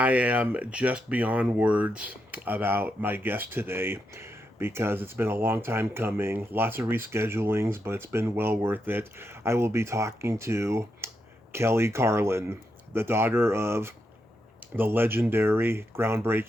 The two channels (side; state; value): both; normal; correlation 0.83